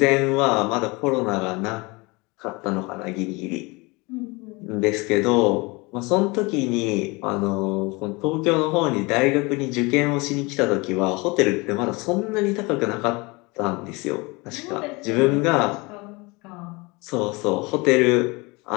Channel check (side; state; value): right; quieter; 25.8 dB